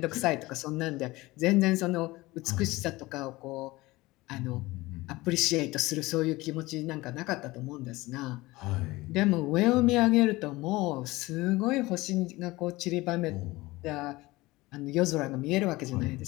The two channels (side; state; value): right; quieter; 20.3 dB